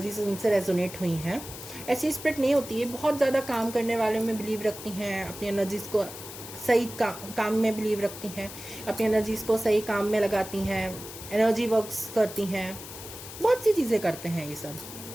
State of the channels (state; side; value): noise; left; hiss, 12 dB below the sound